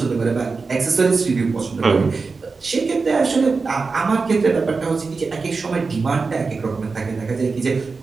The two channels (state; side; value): quieter; left; 4.4 dB